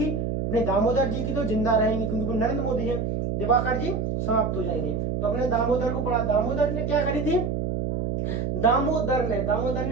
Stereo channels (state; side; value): noise; right; hum, 1 dB below the sound